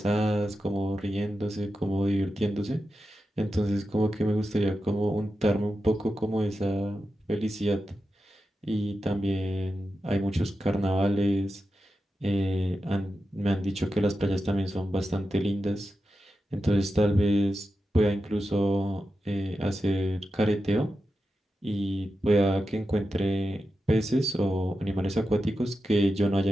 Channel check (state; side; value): normal; both; correlation 0.90